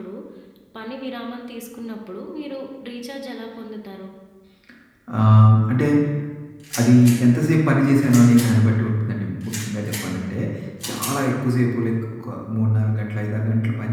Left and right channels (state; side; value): identical; both; correlation 1.00